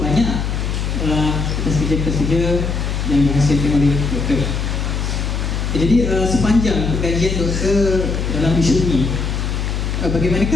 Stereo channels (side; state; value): left; noise; hum, 1 dB below the sound